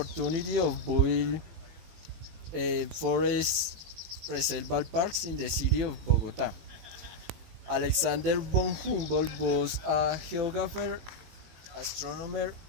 of building forest reserval parks in the city of Bogota. Alexander von Humboldt was a geographer, astronomer,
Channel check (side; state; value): left; late; 18 ms